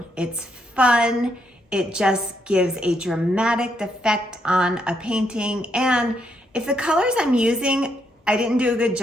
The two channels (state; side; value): normal; both; correlation 0.76